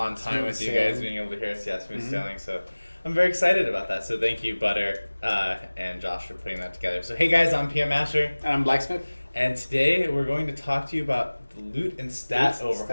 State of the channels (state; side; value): inverted; both; correlation -1.00